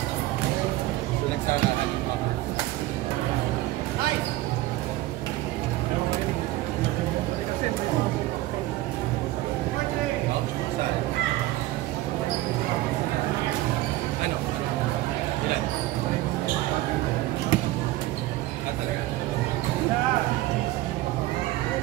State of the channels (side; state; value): left; quieter; 16.9 dB